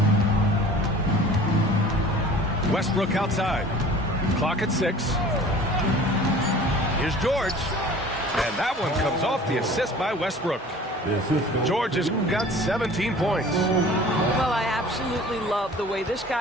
Westbrook outside. Clock at 6. Here's George. And that one comes off the assist by Westbrook. George has got 17 points. Well, I absolutely love the way this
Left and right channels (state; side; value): normal; both; correlation 0.45